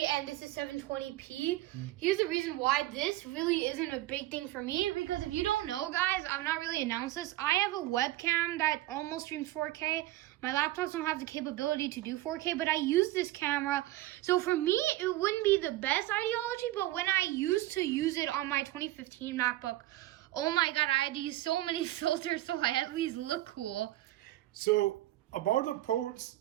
and this is 720p. Here's the reason why this really isn't a big thing for me, because if you don't know, guys, I've not really announced this. I have a webcam that almost streams 4K. My laptops don't have the capability to do 4K, but I use this camera. So for me, it wouldn't be the best ideology, but when I used to use it on my 2015 MacBook, oh my God, I had to use so many filters so I at least look cool. So about the ports,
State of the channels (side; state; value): left; quieter; 16.2 dB